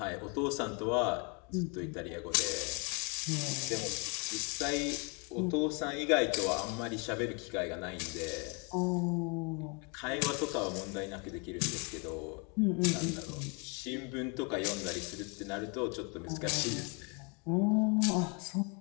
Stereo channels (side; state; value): right; quieter; 33.2 dB